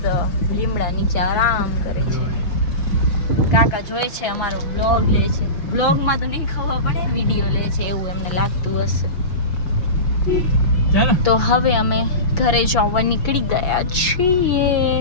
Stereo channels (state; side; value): late; right; 5.9 ms